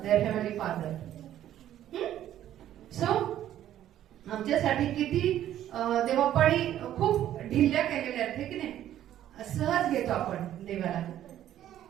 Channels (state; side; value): quieter; left; 11.9 dB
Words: their Heavenly Father. So, आमच्यासाठी किती देवापाळी खूप ढिल्ल्या केलेल्या आहेत, की नाही. सहज घेतो आपण देवाला